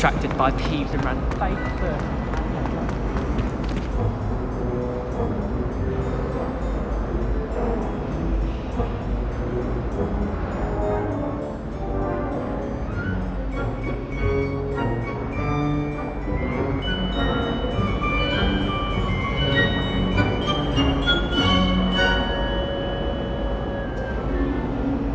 by thieves and ran face first.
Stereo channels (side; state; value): both; identical; correlation 1.00